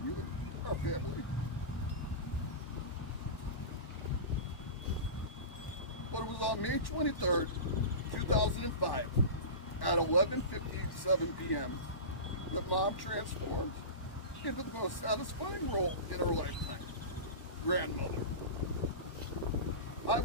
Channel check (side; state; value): right; late; 1.1 ms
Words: you in our family. But it was on May 23rd, 2005, at 11:57 p.m., that Mom transformed into the most satisfying role in her lifetime, grandmother. I